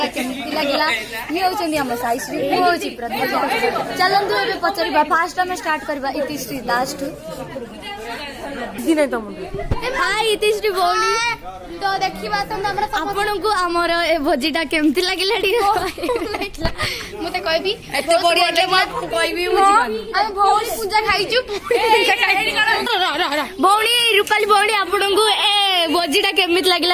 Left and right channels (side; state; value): both; identical; correlation 1.00